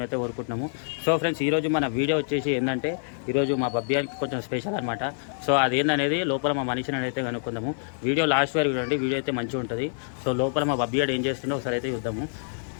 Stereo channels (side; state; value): right; silent; digital silence